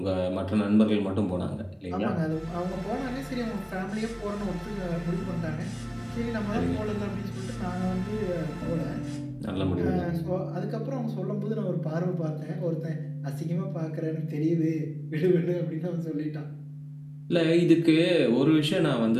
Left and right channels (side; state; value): both; identical; correlation 1.00